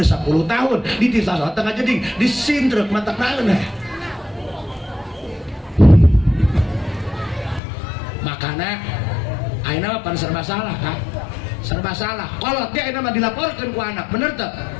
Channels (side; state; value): right; drops out; at 7.6 s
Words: 10 tahun dititah sholat tengah jeding disindrek mata naeun makanya ayeuna mah serba salah Kak serba salah kolot dia ayeuna mah dilaporkeun ku anak bener teu